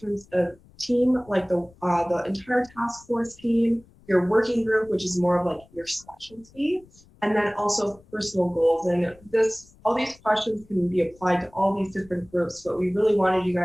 of team, like the entire task force team, your working group, which is more of like your specialty, and then also personal goals. And all these questions can be applied to all these different groups, but we really wanted you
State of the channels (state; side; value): noise; left; rumble, 27 dB below the sound